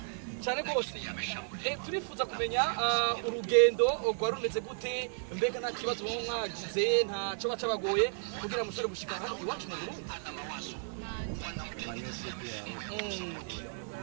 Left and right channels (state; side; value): silent; left; 55 dB below the other